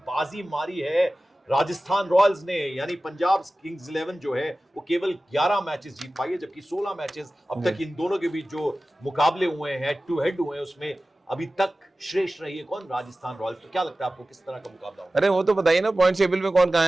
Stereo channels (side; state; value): both; normal; correlation 0.96